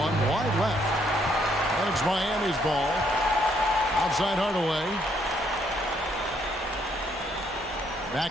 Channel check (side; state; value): both; normal; correlation 0.70